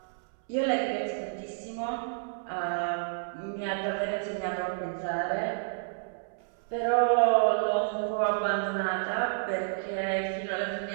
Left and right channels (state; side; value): silent; left; 58 dB below the other